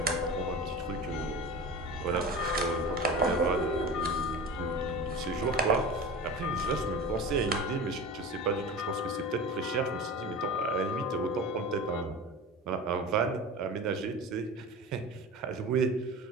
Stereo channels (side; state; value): both; normal; correlation 0.32